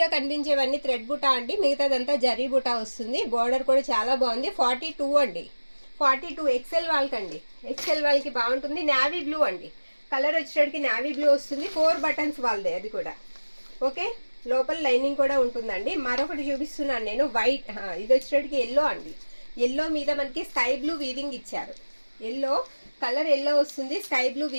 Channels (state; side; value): inverted; both; correlation -1.00